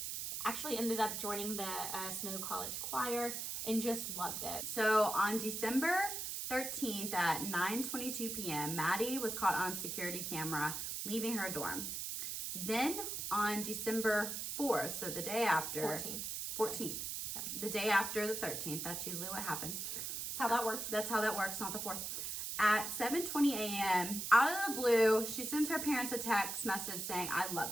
actually ended up joining the Snow College choir and just loved it. So on December 13th at 9:22 p.m., Maddie was caught on security camera leaving her dorm. Then on December 4th, so the day after. 14th. Yeah. The day after the 13th, that's usually what happens. That's how that works. That's how that works, not the 4th. At 7:20 a.m., out of the blue, she sends her parents a text message saying, "I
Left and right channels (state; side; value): noise; right; hiss, 4 dB below the sound